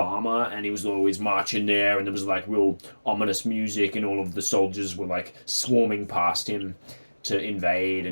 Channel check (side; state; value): both; inverted; correlation -1.00